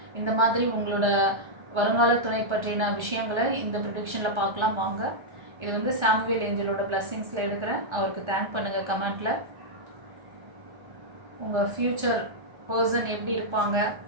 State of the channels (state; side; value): late; left; 1.3 ms